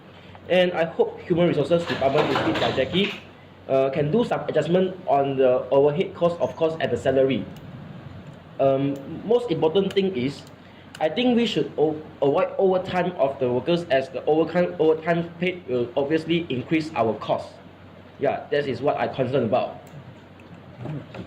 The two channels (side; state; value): both; identical; correlation 1.00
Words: and I hope Human Resources Department, lead by Jackie, can do some adjustment on the overhead cost, of course, at the salary. Most important thing is, I think we should avoid overtime of the workers, as the overtime paid will obviously increase our costs. Yeah, that is what I'm concerned about.